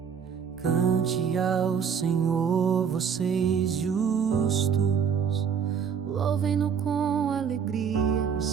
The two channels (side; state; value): left; quieter; 7.1 dB